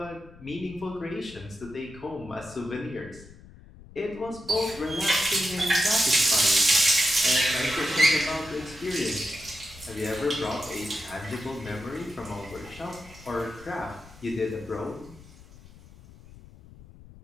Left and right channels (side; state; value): left; noise; rumble, 20 dB below the sound